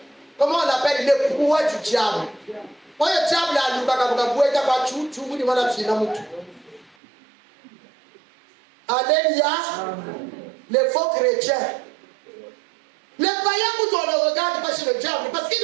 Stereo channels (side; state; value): left; drops out; at 7.0 s